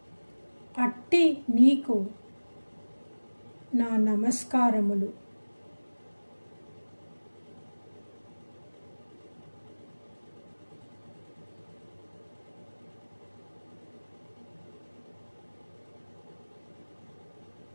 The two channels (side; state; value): both; inverted; correlation -1.00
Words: అట్టి నీకు నా నమస్కారములు.